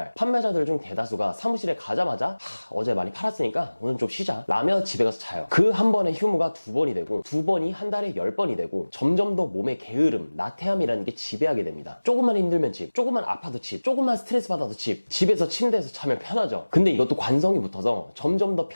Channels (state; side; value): inverted; both; correlation -1.00